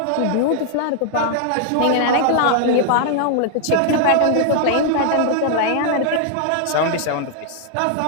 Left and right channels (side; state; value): both; different; correlation -0.01